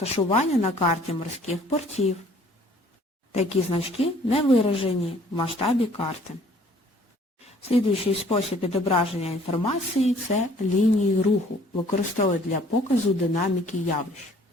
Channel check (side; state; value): both; normal; correlation 0.57